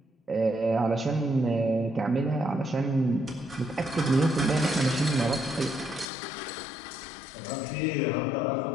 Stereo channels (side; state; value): right; drops out; at 6.1 s